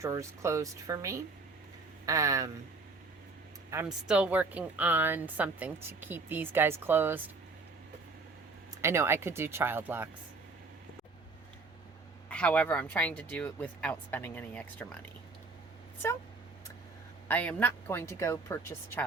closed for me. I'm still working on something to keep these guys closed. I know I could do child locks. However, I'm trying to do it without spending any extra money. So I am not going to go purchase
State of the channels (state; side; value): quieter; left; 3.7 dB